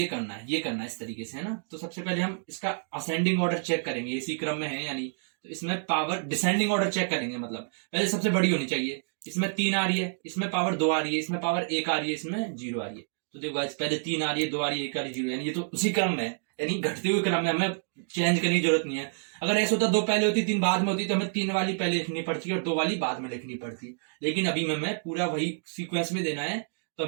करना है, ये करना है इस तरीके से, है ना। तो सबसे पहले हम इसका असेंडिंग ऑर्डर चेक करेंगे, इसी क्रम में है यानी, तो इसमें पावर डिसेंडिंग ऑर्डर चेक करेंगे, मतलब पहले सबसे बड़ी होनी चाहिए, इसमें तीन आ रही है, इसमें पावर दो आ रही है, इसमें पावर एक आ रही है, इसमें जीरो आ रही है। तो देखो गाइस पहले तीन आ रही है, दो आ रही है, एक आ रही है, जीरो, यानी ये तो उसी क्रम में है, यानी घटते हुए क्रम में, हमें चेंज करने की जरूरत नहीं है। अगर ऐसा होता दो पहले होती तीन बाद में होती तो हमें तीन वाली पहले लिखनी पड़ती और दो वाली बाद में लिखनी पड़ती, लेकिन अभी हमें पूरा वही सीक्वेंस में देना है, तो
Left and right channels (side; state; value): left; silent; digital silence